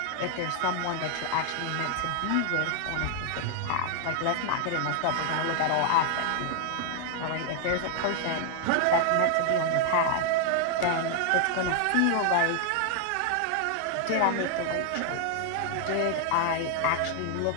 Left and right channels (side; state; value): both; different; correlation 0.00